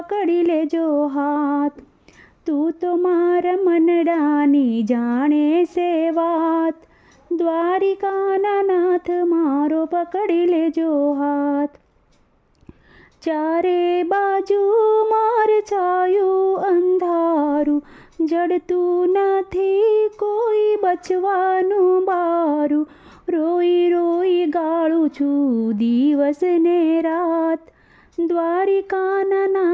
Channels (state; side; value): identical; both; correlation 1.00